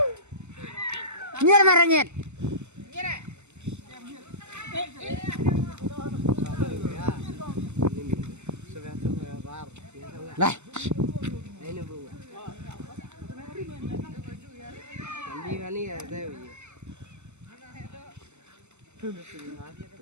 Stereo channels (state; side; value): late; left; 0.83 ms